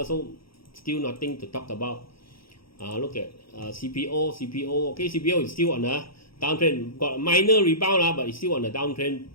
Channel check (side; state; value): right; late; 0.75 ms